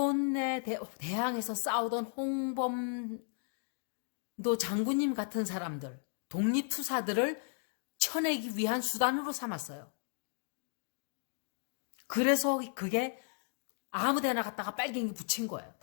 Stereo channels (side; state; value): right; silent; 55 dB below the other